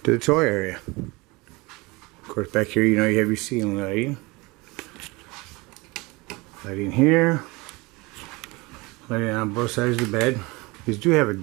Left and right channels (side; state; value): left; quieter; 24.4 dB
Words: to the toy area. Of course, back here, you know, you have your ceiling lighting. Lighting here. Lighting on both sides of the bed. These do have a